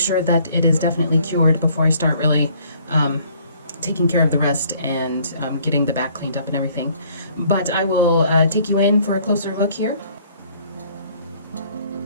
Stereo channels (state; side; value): inverted; both; correlation -0.60